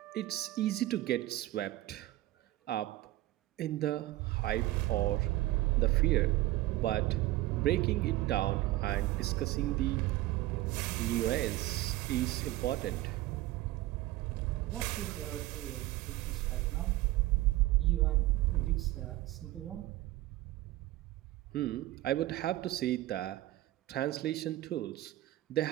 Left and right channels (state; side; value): quieter; left; 16.9 dB